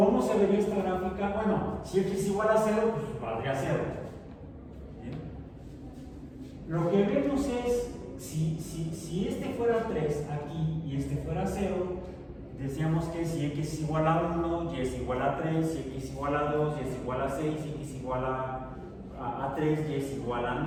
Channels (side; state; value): both; identical; correlation 1.00